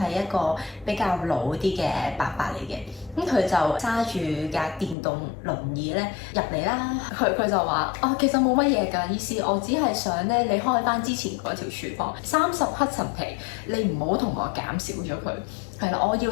一個比較老啲嘅伯伯嚟嘅，咁佢就揸住架電動輪椅咧入嚟啦。佢就話：哦，其實冇乜嘢㗎，醫師，我只係想咧你開翻之前嗰條廚房30黑陳皮，你唔好同我減少咗佢。係啦，我要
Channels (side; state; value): right; drops out; at 5.0 s